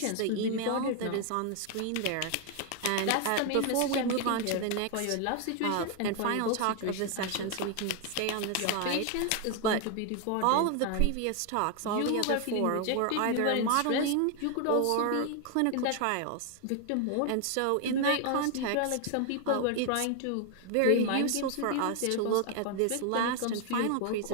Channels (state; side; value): different; both; correlation 0.00